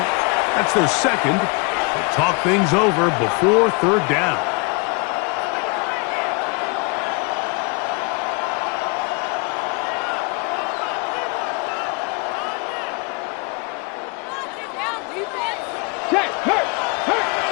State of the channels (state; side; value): quieter; right; 31.3 dB